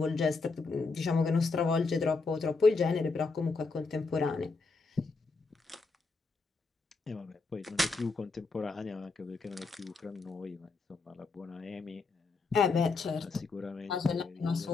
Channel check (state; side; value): quieter; right; 4.1 dB